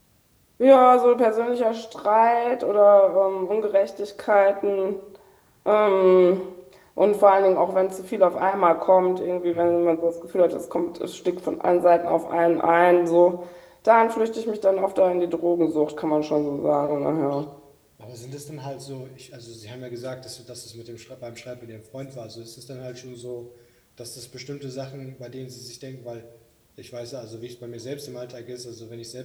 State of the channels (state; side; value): identical; both; correlation 1.00